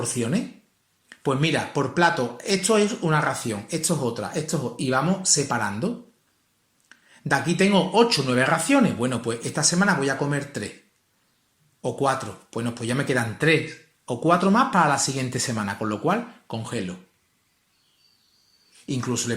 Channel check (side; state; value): both; identical; correlation 1.00